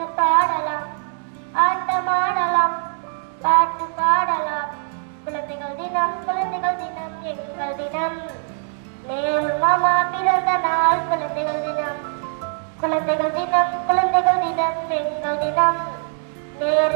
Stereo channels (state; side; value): silent; left; 62 dB below the other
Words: பாடலாம், ஆட்டமாடலாம், பாட்டு பாடலாம். குழந்தைகள் தினம், குழந்தைகள் தினம், எங்கள் தினம். நேரு மாமா பிறந்த நாள் குழந்தைகள் தினம். குழந்தைகள் தினம், குழந்தைகள் தினம், எங்கள் தினம்.